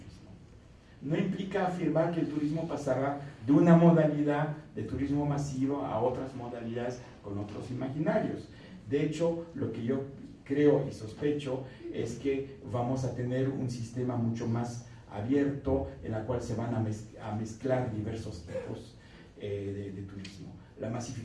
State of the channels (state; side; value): identical; both; correlation 1.00